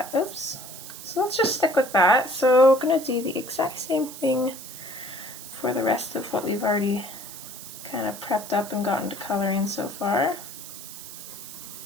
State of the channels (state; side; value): noise; right; hiss, 13 dB below the sound